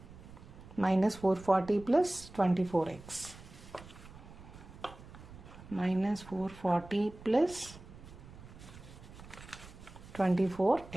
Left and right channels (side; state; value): right; noise; rumble, 17 dB below the sound